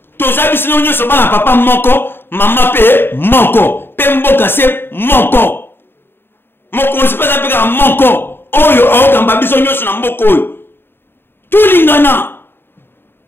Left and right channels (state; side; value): late; right; 0.10 ms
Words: To zabi sino nyoso bana papa moko, mama pe moko. Pe mboka se moko. Mokonzi pesa peka moko oyo aokamba biso nyonso na mboko oyo tulingana